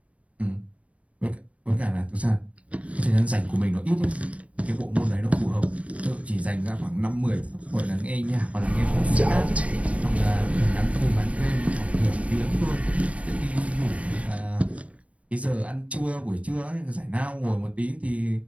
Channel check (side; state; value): left; late; 0.064 ms